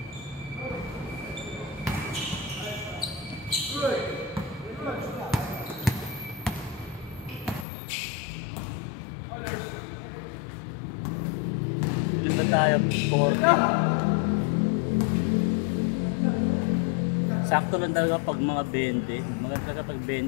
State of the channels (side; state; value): right; drops out; at 7.7 s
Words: Dito tayo, 40. Sakto lang talaga pag mga 20. Mga talaga pag